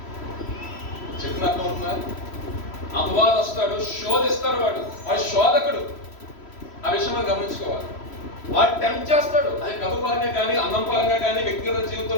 చెప్పిన అర్థం అవుతుందా? అపవాదం వస్తాడు, శోధిస్తాడు, వాడు శోధకుడు. ఆ విషయం మనం గమనించుకోవాలి. వాడు టెంప్ట్ చేస్తాడు, అది డబ్బు పరంగా కానీ, అన్నం పరంగా కానీ, వ్యక్తిగత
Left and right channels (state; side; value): late; right; 3.1 ms